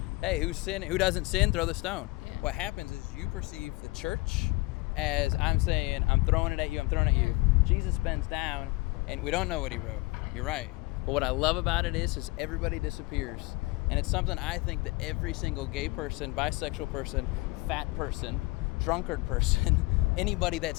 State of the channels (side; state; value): right; quieter; 23.1 dB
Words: hey, who doesn't sin, throw the stone. Yeah. What happens is you perceive the church as I'm saying, I'm throwing it at you, I'm throwing it at you. Jesus bends down, and we don't know what he wrote. You're right. But what I love about it is everybody disappears. And it's something I think that every single gay person, bisexual person, fat person, drunkard person, anybody